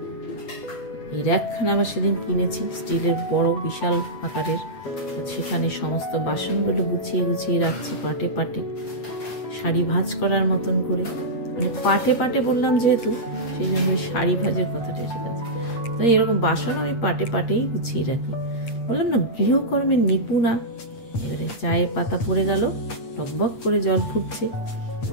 এই র্যাকখানা আবার সেদিন কিনেছি, স্টিলের বড় বিশাল আকারের। তো সেখানে সমস্ত বাসনগুলো গুছিয়ে গুছিয়ে রাখছি পাটে পাটে, শাড়ি ভাঁজ করার মতন করে। মানে পাটে পাটে বললাম যেহেতু, সেই জন্য ওই শাড়ি ভাজের কথাটা এসে গেছে। তো এরকম বাসন আমি পাটে পাটেই গুছিয়ে রাখি। বললাম না গৃহকর্মের নিপুণা। এবারে চায়ের পাতা পড়ে গেল, টকবক করে জল ফুটছে,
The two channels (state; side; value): late; right; 8.5 ms